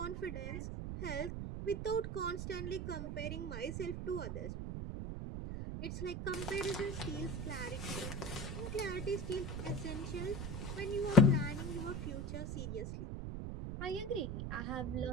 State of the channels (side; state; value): right; noise; rumble, 4 dB below the sound